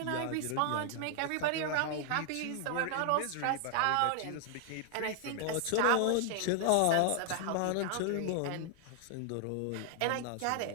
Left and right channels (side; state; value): both; different; correlation 0.00